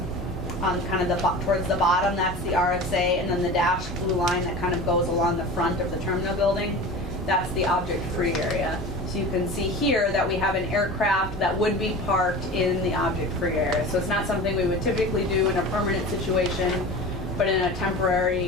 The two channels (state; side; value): normal; both; correlation 0.34